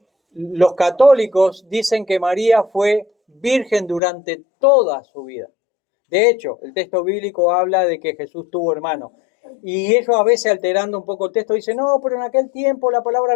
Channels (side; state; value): right; drops out; at 4.0 s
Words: los católicos dicen que María fue virgen durante toda su vida? De hecho, el texto bíblico habla de que Jesús tuvo hermanos. Y ellos a veces, alterando un poco el texto, dicen: no, pero en aquel tiempo la palabra